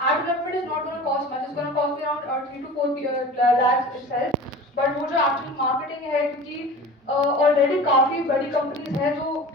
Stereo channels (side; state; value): both; normal; correlation 0.37